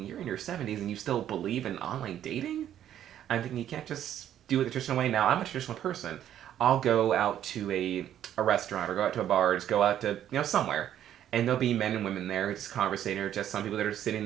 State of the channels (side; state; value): left; quieter; 10.9 dB